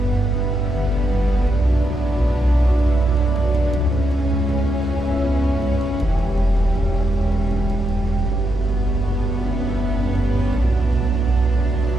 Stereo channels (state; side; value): normal; both; correlation 0.82